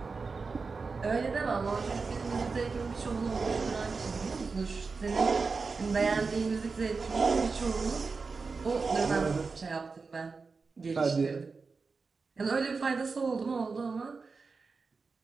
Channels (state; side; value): quieter; left; 4.5 dB